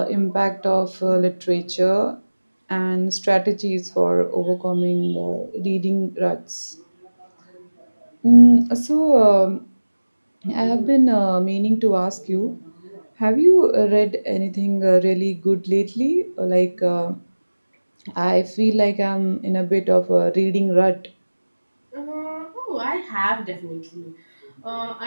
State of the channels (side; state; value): both; inverted; correlation -1.00